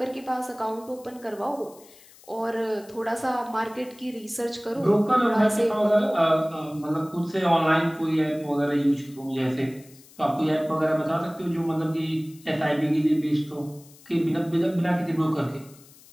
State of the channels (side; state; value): left; noise; hiss, 24 dB below the sound